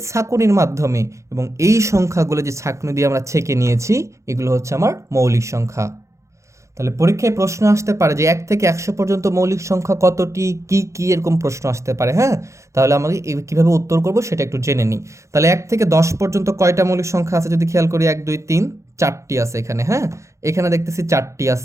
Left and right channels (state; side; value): late; left; 0.14 ms